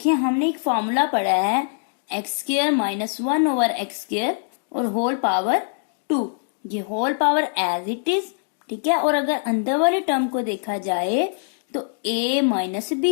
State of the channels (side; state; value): right; silent; digital silence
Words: हमने एक फॉर्मूला पढ़ा है x square minus 1/x square और होल पावर 2, ये whole power as it is. ठीक है, और अगर अंदर वाली टर्म को देखा जाए तो a माइनस